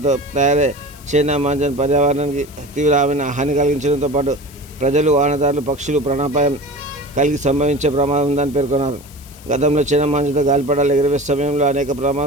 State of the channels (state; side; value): noise; left; hiss, 22 dB below the sound